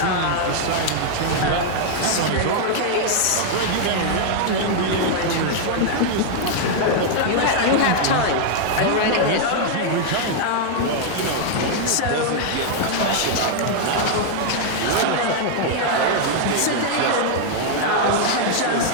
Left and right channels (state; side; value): different; both; correlation 0.00